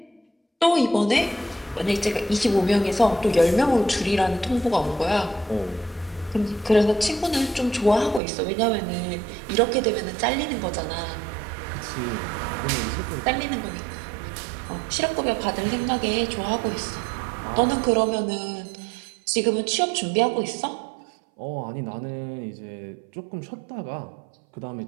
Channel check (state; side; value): drops out; left; at 8.2 s